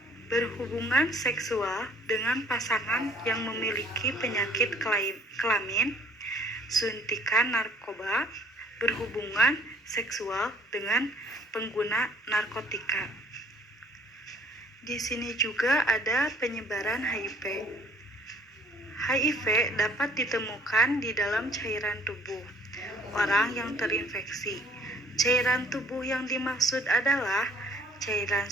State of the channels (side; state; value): both; normal; correlation 0.58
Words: berhubungan seksual dengan pasangan yang memiliki penyakit kelamin, suntikan narkoba, berhubungan seksual dengan pengguna narkotika. Di sini juga ada penyebaran HIV. HIV dapat ditemukan di dalam cairan tubuh orang yang terinfeksi. Cairan tubuh yang dimaksud adalah cairan